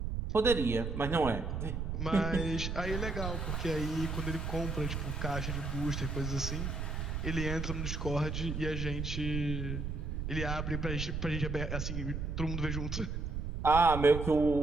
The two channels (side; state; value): right; noise; rumble, 3 dB below the sound